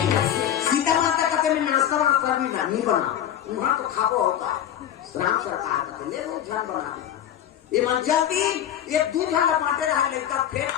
सीता माता कहते मैं नाश्ता वास्ता भी नहीं बना वहां तो खाबो होता राम सरकार कहते ले लो ध्यान बना ये मन जल्दी ये 2 जन बांटे रहा लेता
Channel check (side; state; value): right; quieter; 10.6 dB